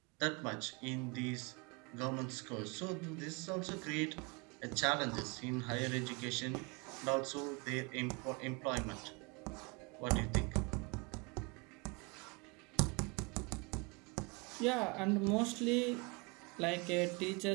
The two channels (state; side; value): quieter; left; 29.8 dB